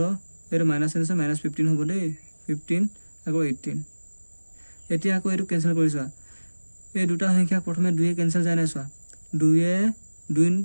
এইটো মাইনাছ আছে -15 হ'ব দেই 15 আকৌ 18 এতিয়া আকৌ এইটো কেঞ্চেল কৰিছোৱা এই দুটা সংখ্যাক প্ৰথমে 2 কেঞ্চেল যায় নাই চোৱা 2 2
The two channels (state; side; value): inverted; both; correlation -1.00